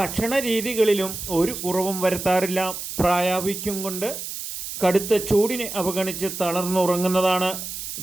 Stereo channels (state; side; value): noise; right; hiss, 7 dB below the sound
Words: രീതികളിലും ഒരു കുറവും വരുത്താറില്ല. പ്രായാധിക്യം കൊണ്ട് കടുത്ത ചൂടിനെ അവഗണിച്ച് തളർന്നുറങ്ങുന്നതാണ്.